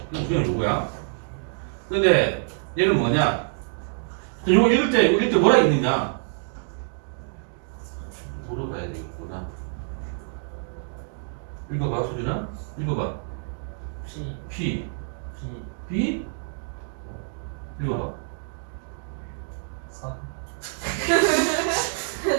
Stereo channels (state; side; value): silent; left; digital silence